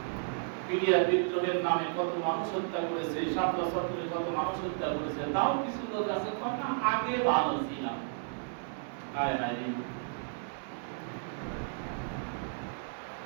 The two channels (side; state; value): left; silent; digital silence